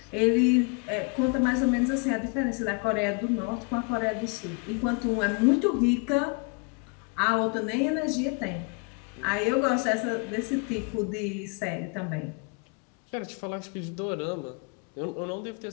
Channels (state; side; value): quieter; right; 34.0 dB